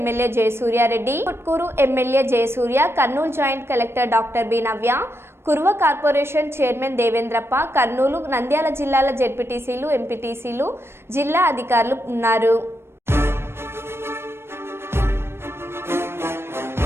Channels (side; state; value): left; late; 0.12 ms